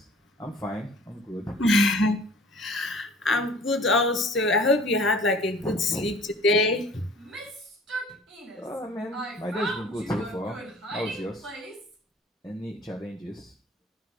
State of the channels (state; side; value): normal; both; correlation 0.48